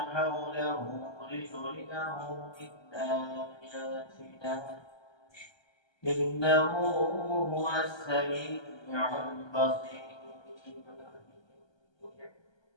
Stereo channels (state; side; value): late; right; 1.3 ms